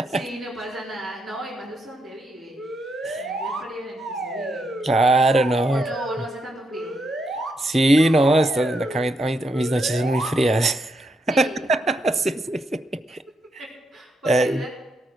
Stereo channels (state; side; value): normal; both; correlation 0.80